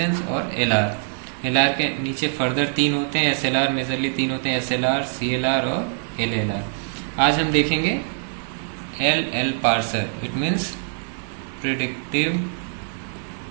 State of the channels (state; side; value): silent; left; 63 dB below the other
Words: और एलआर। एलआर के नीचे फर्दर तीन होते हैं, एसएलआर मेजरली तीन होते हैं, एसएलआर, सीएलआर और एलएलआर। आज हम देखेंगे L parser, it means predictive